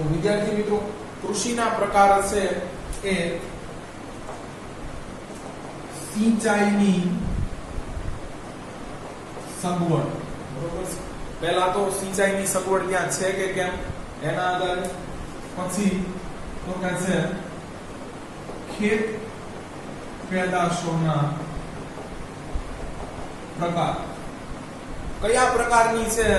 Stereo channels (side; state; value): both; identical; correlation 1.00